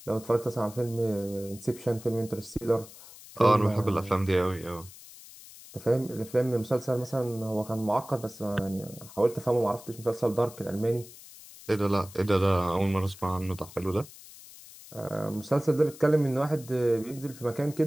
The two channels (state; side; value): noise; left; hiss, 18 dB below the sound